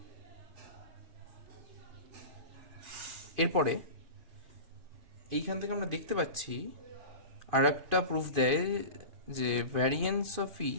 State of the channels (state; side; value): late; left; 2.5 ms